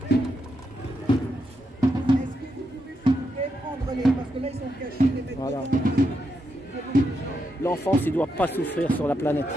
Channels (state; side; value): normal; both; correlation 0.83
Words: prenez, parce que là, ils sont cachés, les mecs. Voilà. L'enfance, il ne doit pas souffrir sur la planète.